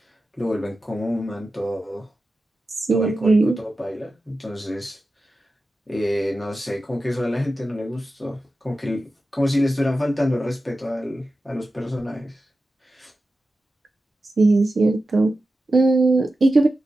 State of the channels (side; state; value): both; normal; correlation 0.93